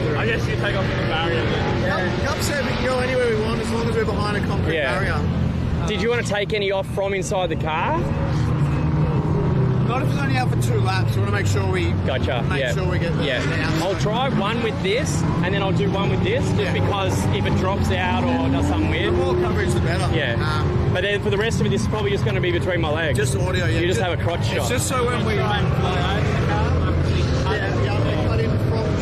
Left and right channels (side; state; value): both; identical; correlation 1.00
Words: I guess you take off the barrier then. Cup said we can go anywhere we want as long as we're behind a concrete barrier. Did you want to take any off from inside the car? Not if it's only out for 2 laps. We want to make sure we make sure we get the outside. I'll try one with this, and then I'll do one with this, just because if it drops out or does something weird. The more coverage, the better. Yeah. But then for the rest of it, this is probably just going to be between my legs. Just audio, yeah. You just have a crotch shot. It's just so when we cut in from the